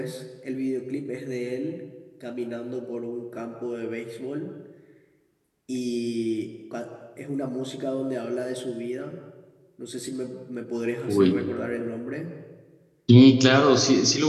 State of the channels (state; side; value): identical; both; correlation 1.00